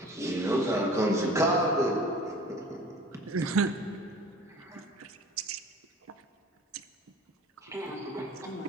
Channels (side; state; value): both; normal; correlation 0.45